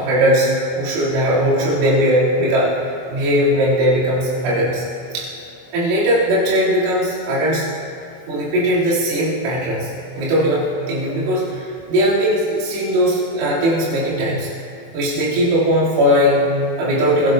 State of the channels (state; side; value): late; left; 24 ms